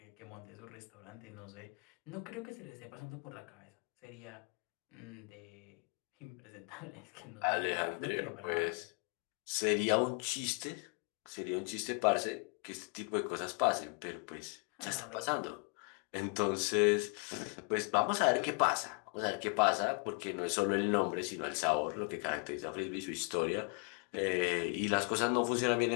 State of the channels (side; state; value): right; quieter; 36.1 dB